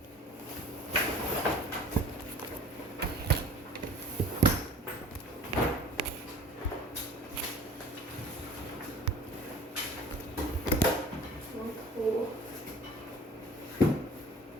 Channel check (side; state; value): both; normal; correlation 0.47